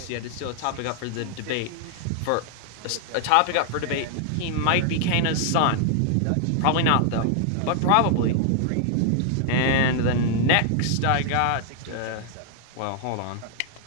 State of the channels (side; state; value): both; different; correlation 0.00